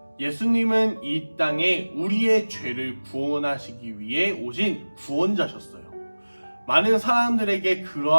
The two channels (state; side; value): inverted; both; correlation -1.00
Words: 예수님은 이 땅에 우리의 죄를 구원하시기 위해 오신 구원자셨어요. 많은 사람들에게